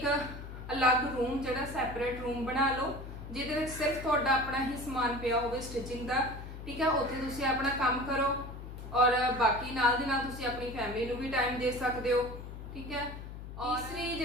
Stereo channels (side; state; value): left; noise; hum, 11 dB below the sound